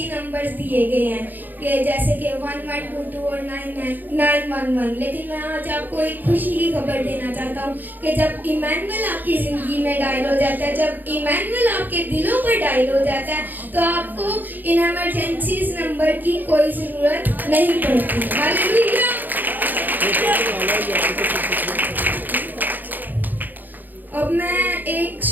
نمبرز دیے گئے ہیں کہ جیسے کہ 1122 اور 911, لیکن میں آج آپ کو ایک خوشی کی خبر دینا چاہتا ہوں کہ جب ایمینول آپ کی زندگی میں ڈائل ہو جاتا ہے, جب ایمینول آپ کے دلوں پر ڈائل ہو جاتا ہے, تو آپ کو ان ایمرجنسیز نمبر کی کوئی ضرورت نہیں پڑتی. ہاللیلویا. اب میں ایک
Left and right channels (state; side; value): late; left; 0.086 ms